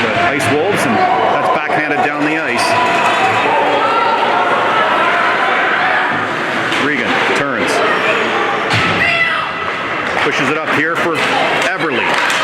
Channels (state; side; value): identical; both; correlation 1.00